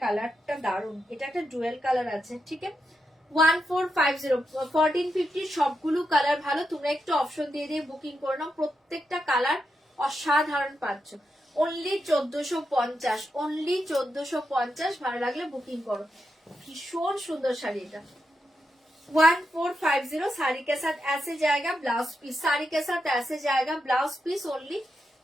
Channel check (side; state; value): both; normal; correlation 0.85